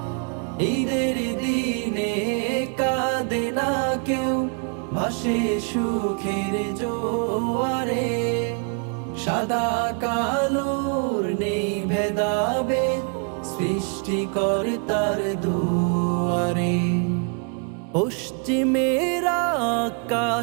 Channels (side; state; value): left; quieter; 37.3 dB